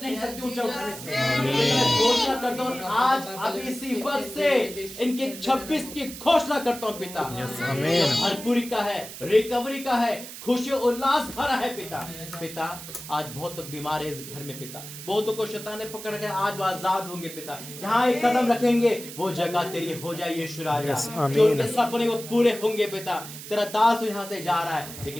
नहीं सकती ऊंचा उठने से। मैं घोषणा करता हूँ आज अभी इसी वक्त से इनके 26 की घोषणा करता हूँ पिता। भरपूरी का है, रिकवरी का है, खुशी उल्लास भरा है पिता। पिता आज बहुत लोग बीमार है इस घर में पिता, बहुतों को शैतान ने पकड़ के, आज वो आजाद होंगे पिता। जहाँ एक कदम रखेंगे वो जगह तेरी हो जाए यीशु राजा। जो उनके सपने वो पूरे होंगे पिता। तेरा दास यहाँ से जा रहा है,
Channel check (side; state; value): right; noise; hiss, 12 dB below the sound